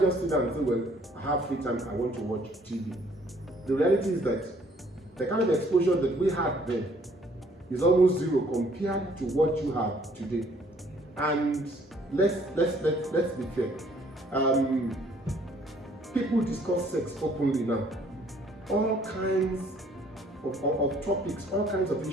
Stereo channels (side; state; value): both; normal; correlation 0.61